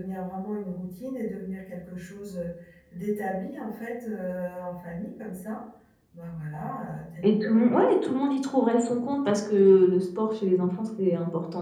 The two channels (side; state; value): both; identical; correlation 1.00